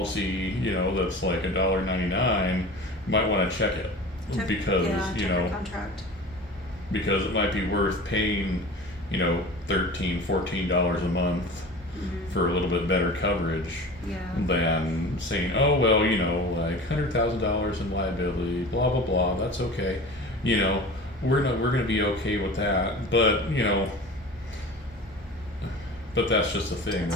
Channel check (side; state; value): both; normal; correlation 0.36